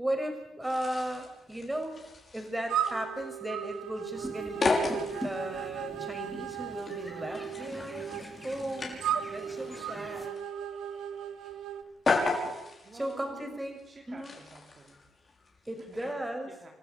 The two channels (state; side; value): normal; both; correlation 0.79